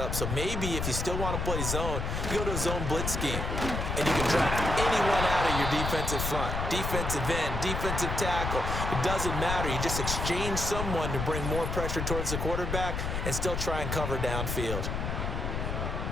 So maybe if you still want to play zone, you go to a zone blitz scheme. And you can drop anyone out of your defensive front. Defensive end, defensive tackle. It doesn't matter. You just exchange someone to bring more pressure towards the quarterback and still try and cover downfield.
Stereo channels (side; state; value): left; noise; rumble, 2 dB below the sound